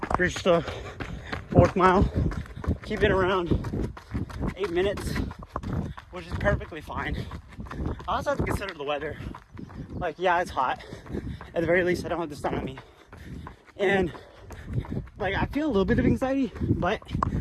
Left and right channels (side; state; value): both; identical; correlation 1.00